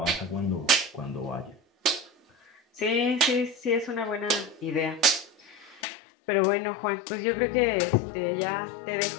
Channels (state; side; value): drops out; right; at 5.8 s